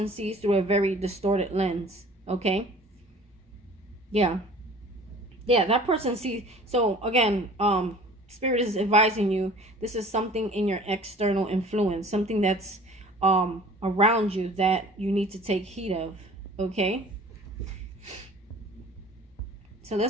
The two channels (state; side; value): normal; both; correlation 0.47